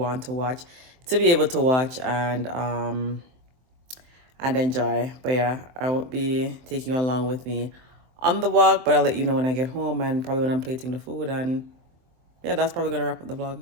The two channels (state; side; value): late; left; 23 ms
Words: to watch to be able to watch and enjoy. But yeah, I won't be taking you along with me on the walk, but I'll let you know when I get home and probably when I'm plating the food. And yeah, that's probably gonna wrap up the vlog.